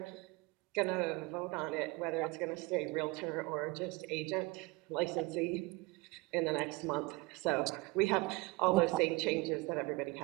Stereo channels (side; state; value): left; quieter; 24.5 dB